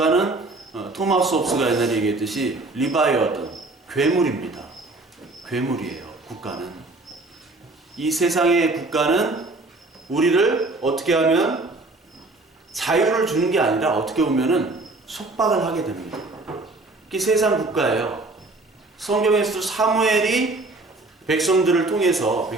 토마스 홉스가 옛날에 얘기했듯이 리바이어든 괴물입니다. 괴물이에요. 국가는. 이 세상의 국가는 우리를 어떻게 하면 자유를 주는 게 아니라 어떻게 보면은 속박을 하게 됩니다. 그게 세상 국가예요. 성경에서도 사무엘이 백성들을 통해서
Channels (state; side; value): quieter; left; 3.1 dB